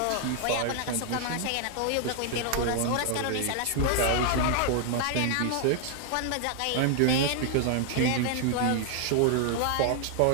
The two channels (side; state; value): both; different; correlation 0.00